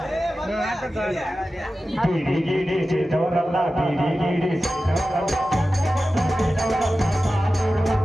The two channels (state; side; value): normal; both; correlation 0.94